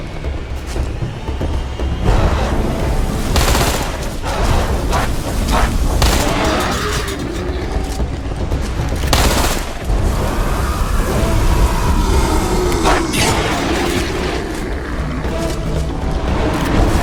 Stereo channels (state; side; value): identical; both; correlation 1.00